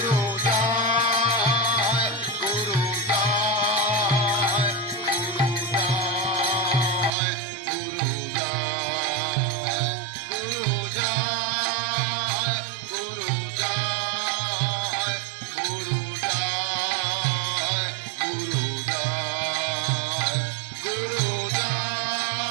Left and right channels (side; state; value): left; drops out; at 7.1 s